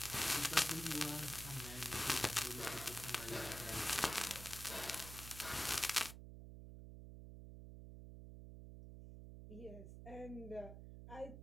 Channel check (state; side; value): noise; right; hum, 11 dB below the sound